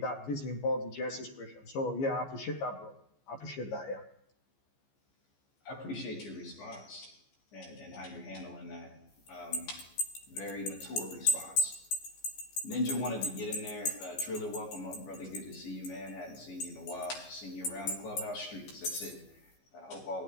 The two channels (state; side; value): late; right; 15 ms